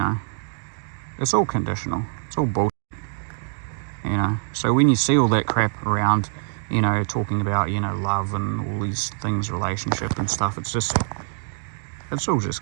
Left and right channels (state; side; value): silent; left; digital silence